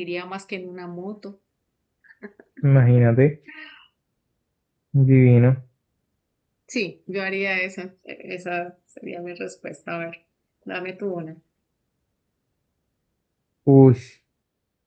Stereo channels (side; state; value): both; identical; correlation 1.00